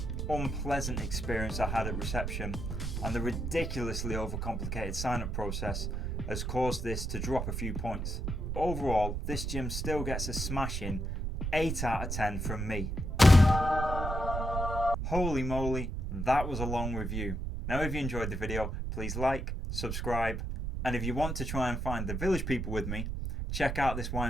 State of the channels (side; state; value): right; noise; rumble, 3 dB below the sound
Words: unpleasant experience I had at reception and the ridiculously overcomplicated sign-up process has caused this to drop a few points. Overall, this gym still gets a smashing 8 out of 10 from me. Holy moly, that was a long review. Now if you enjoyed the video, please like, subscribe, and if you want to try and find the village people with me, check out this